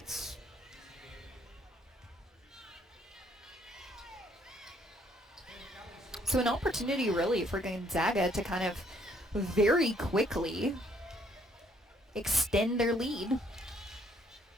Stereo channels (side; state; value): both; normal; correlation 0.66